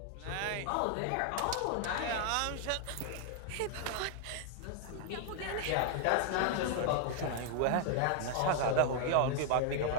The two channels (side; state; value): both; different; correlation 0.00